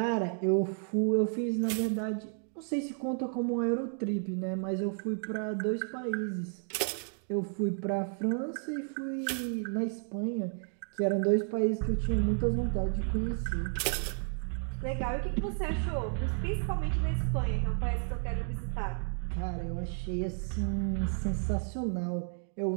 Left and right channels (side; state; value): left; silent; 56 dB below the other